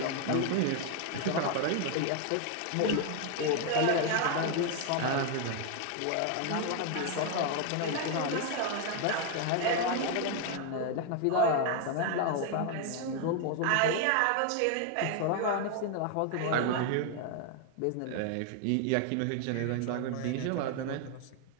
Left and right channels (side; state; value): both; different; correlation 0.00